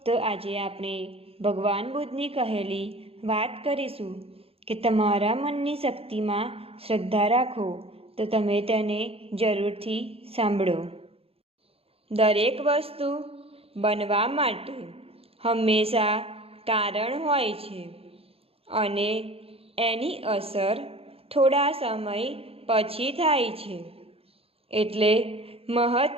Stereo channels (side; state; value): left; late; 0.28 ms